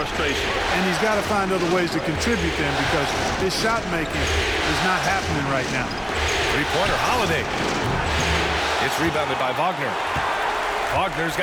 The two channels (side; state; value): both; identical; correlation 1.00